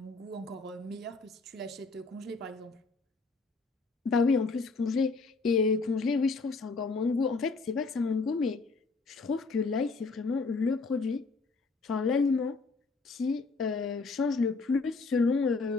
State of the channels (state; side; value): quieter; right; 4.0 dB